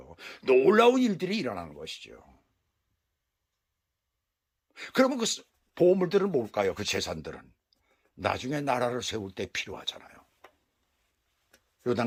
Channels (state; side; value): identical; both; correlation 1.00